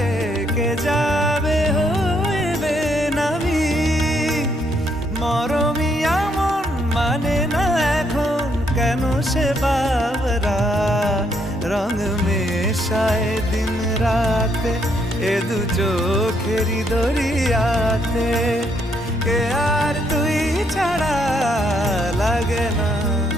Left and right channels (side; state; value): both; normal; correlation 0.73